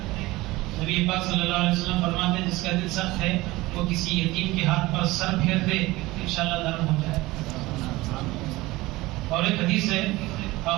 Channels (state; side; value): quieter; left; 19.7 dB